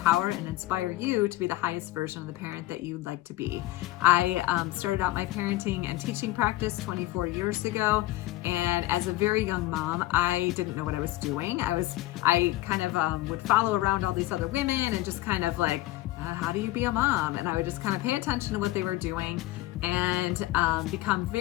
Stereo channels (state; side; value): quieter; right; 17.4 dB